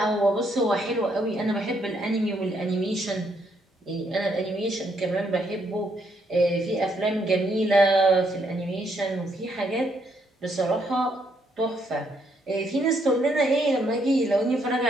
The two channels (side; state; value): both; normal; correlation 0.73